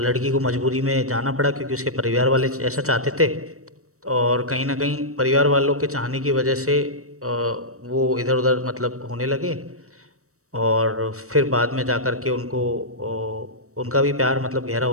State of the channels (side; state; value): left; late; 0.65 ms